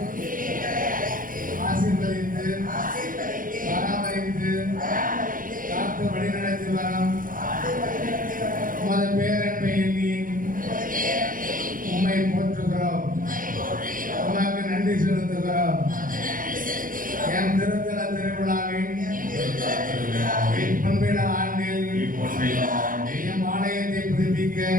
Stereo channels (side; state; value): left; late; 0.40 ms